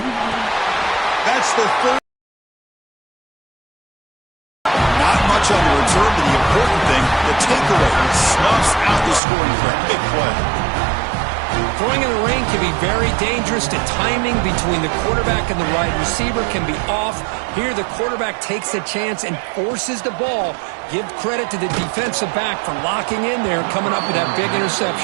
That's the third. Not much on the return, but the important thing, the takeaway snuffs out the scoring for a big play. Throwing in the rain can be very dangerous. The timing between the quarterback and the wide receiver can be off. Here the quarterback takes a chance and forces the ball. Give credit to the defensive back for locking in there and coming up with that big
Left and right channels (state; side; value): drops out; left; at 9.2 s